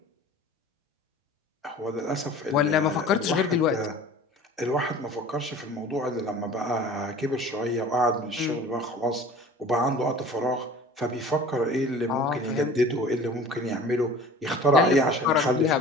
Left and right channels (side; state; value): both; normal; correlation 0.43